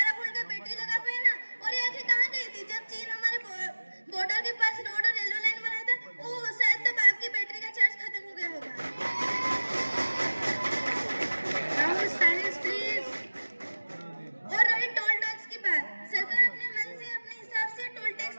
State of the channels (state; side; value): inverted; both; correlation -1.00